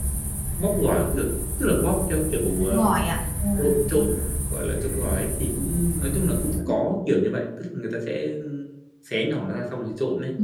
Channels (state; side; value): identical; both; correlation 1.00